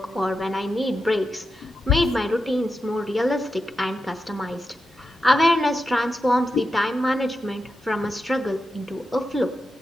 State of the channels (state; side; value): normal; both; correlation 0.89